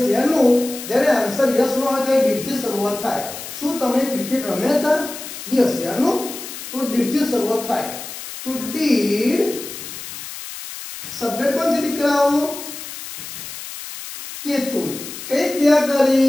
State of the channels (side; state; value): left; noise; hiss, 10 dB below the sound